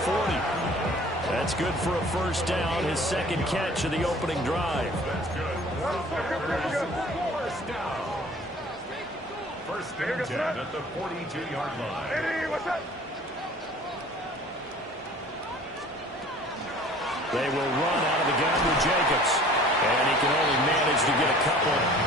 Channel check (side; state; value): both; normal; correlation 0.49